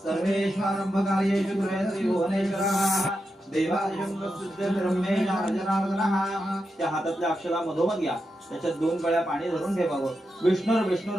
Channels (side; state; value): both; normal; correlation 0.87